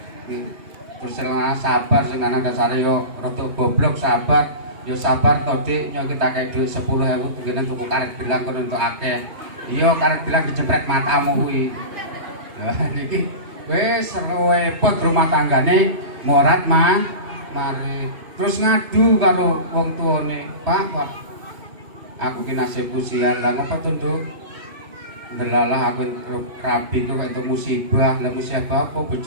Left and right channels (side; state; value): left; late; 3.2 ms